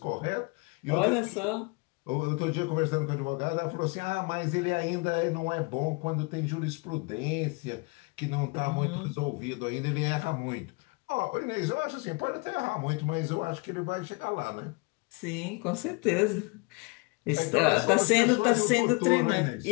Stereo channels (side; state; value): right; quieter; 29.9 dB